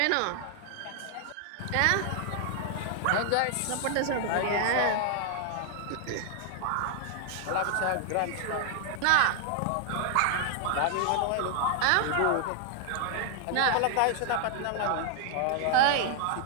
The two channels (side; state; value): both; different; correlation 0.00